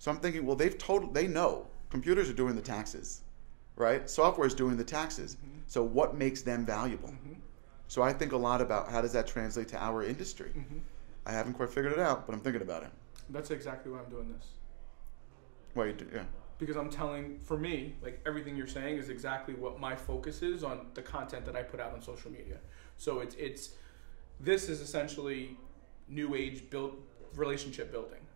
I'm thinking, well, they know. Computers are doing the taxes, right? Software is doing the taxes. Mm-hmm. So what makes them valuable? Mm-hmm. So I think a lot about how does that translate to our industry. Mm-hmm. I haven't quite figured it out, but I'm thinking about it. That's exactly why I'm doing this. Well, you do, yeah. Because I'm telling, for me, like everything you're saying is exactly what my focus is on the content that I put out on social media. So this is essentially new age relationship building.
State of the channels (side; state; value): left; silent; digital silence